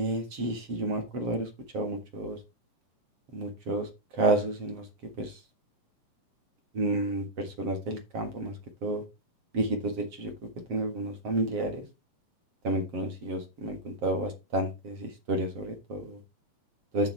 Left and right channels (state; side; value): late; left; 7.6 ms